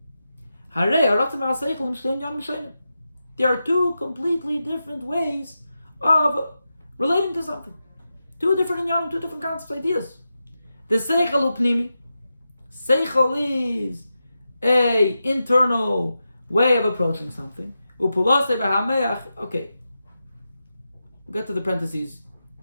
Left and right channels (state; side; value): inverted; both; correlation -0.90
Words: There are two completely different ways of relating to something. Two different inyanim, two different concepts, ideas. The seichel upnimi. Seichel is a internal way of approaching something. Okay. We'll get to the parentheses